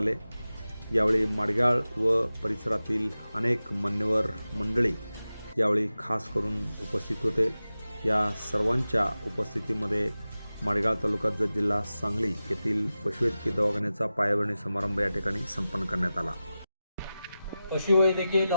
यावेळी माडगाळ व परिसरातील अनेक मान्यवर मंडळी यावेळी खास करून उपस्थित होते। या सर्वांच्या उपस्थितीमध्ये माडगाळ तालुका जत जिल्हा सांगली येथील पशुवैद्यकीय दवाखान्याचा पायाभरणी समारंभ या ठिकाणी संपन्न करण्यात आला। पशुवैद्यकीय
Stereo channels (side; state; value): both; inverted; correlation -0.94